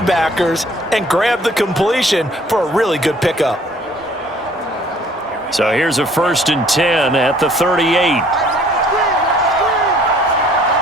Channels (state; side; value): normal; both; correlation 0.56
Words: and grab the completion for a really good pickup. So here's a 1st and 10 at the 38.